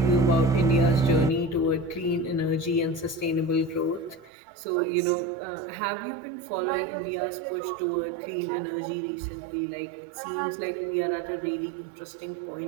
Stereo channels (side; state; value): left; drops out; at 4.3 s